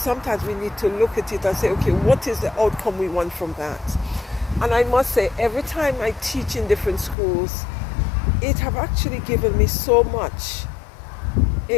we need to look at it and say, okay, what is the outcome we want from that? And I must say, every time I teach in different schools, it have actually given me so much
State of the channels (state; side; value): drops out; right; at 7.2 s